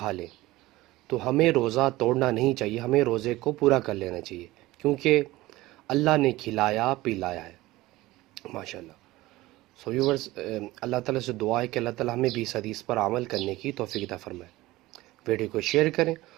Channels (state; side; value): quieter; left; 18.4 dB